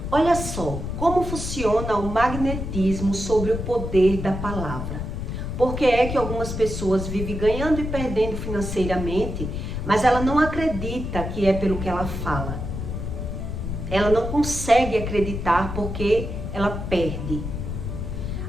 Olha só, como funciona o magnetismo sobre o poder da palavra. Por que é que algumas pessoas vivem ganhando e perdendo financeiramente, mas ela não acredita que é pelo que ela fala. Ela não consegue acreditar porque ela perde.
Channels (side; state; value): left; noise; rumble, 5 dB below the sound